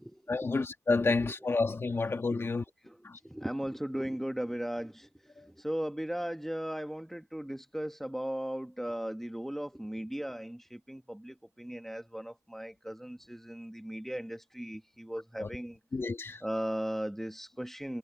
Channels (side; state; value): both; normal; correlation 0.92